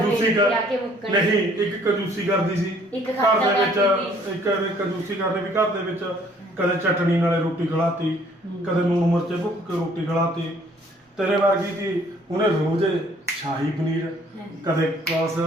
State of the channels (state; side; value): normal; both; correlation 0.60